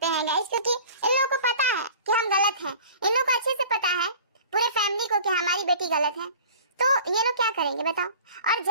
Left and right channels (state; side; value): inverted; both; correlation -0.44